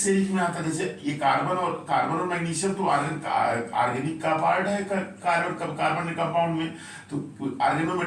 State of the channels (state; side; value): identical; both; correlation 1.00